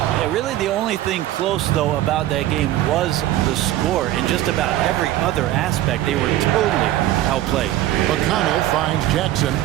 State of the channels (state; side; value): quieter; left; 14.1 dB